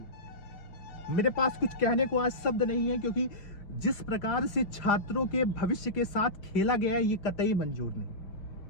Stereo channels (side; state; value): right; late; 5.2 ms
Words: मेरे पास कुछ कहने को आज शब्द नहीं है, क्योंकि जिस प्रकार से छात्रों के भविष्य के साथ खेला गया है ये कतई मंजूर नहीं।